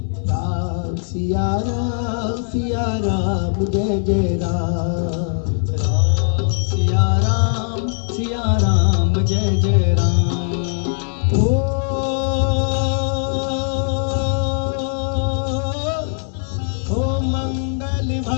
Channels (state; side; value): silent; right; digital silence